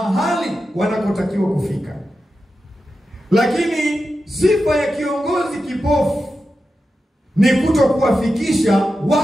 wanakotakiwa kufika. Lakini sifa ya kiongozi kipofu ni kutokuwafikisha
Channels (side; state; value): both; normal; correlation 0.90